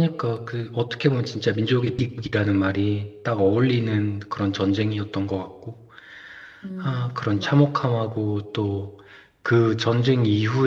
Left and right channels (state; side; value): identical; both; correlation 1.00